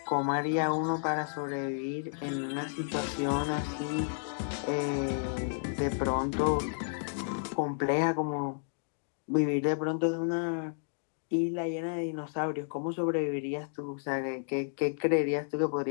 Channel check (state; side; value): silent; right; digital silence